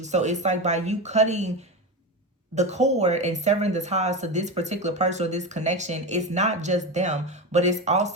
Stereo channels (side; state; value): both; normal; correlation 0.19